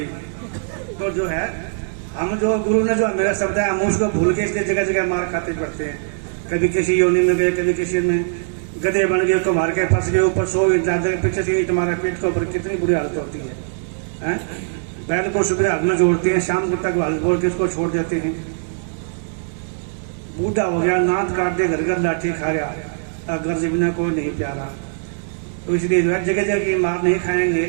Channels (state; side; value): silent; left; digital silence